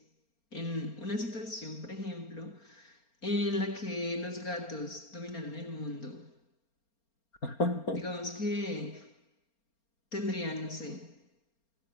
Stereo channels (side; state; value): right; late; 4.3 ms